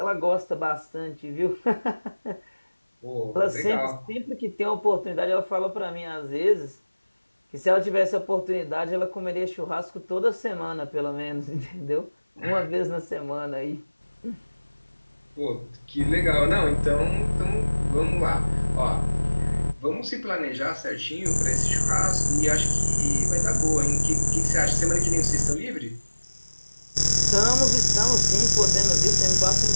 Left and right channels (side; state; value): both; inverted; correlation -1.00